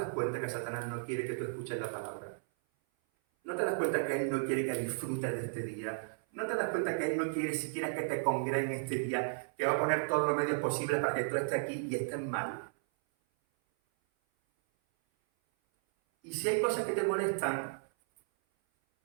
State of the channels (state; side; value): silent; left; 55 dB below the other